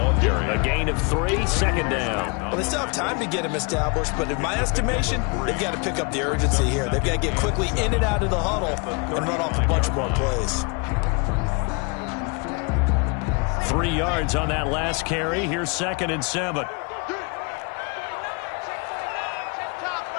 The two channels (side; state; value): right; quieter; 32.2 dB